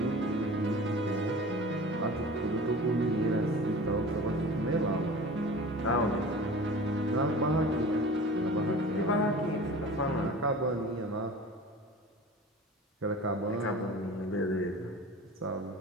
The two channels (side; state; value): both; normal; correlation 0.38